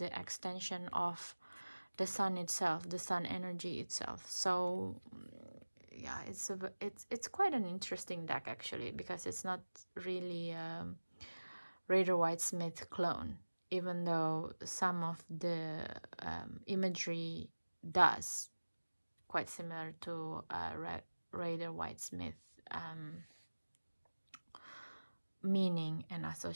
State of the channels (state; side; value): inverted; both; correlation -1.00